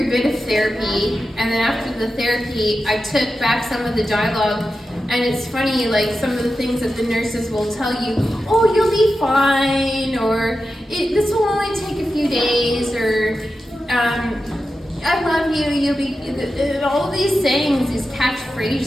a bit of therapy, and then after the therapy I took back some of the dialogue, and it's funny, like some of the things that the nurses will tell you, oh, you'll be fine, or this will only take a few days, or I love you, you'll be, all of these sayings, these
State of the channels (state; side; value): normal; both; correlation 0.91